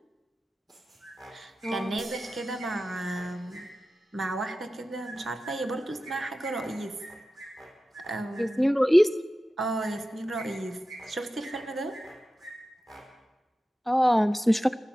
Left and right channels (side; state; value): both; normal; correlation 0.94